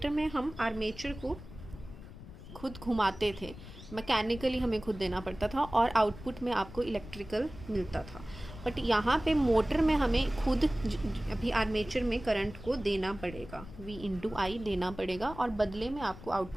में हम आर्मेचर को खुद घुमाते थे, मैकेनिकली हमें खुद देना पड़ता था और आउटपुट में आपको इलेक्ट्रिकल मिलता था। बट यहाँ पे मोटर में हमें खुद अभी आर्मेचर में करंट को देना पड़ेगा, V/I देना पड़ेगा, और बदले में आपको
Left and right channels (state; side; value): noise; left; rumble, 15 dB below the sound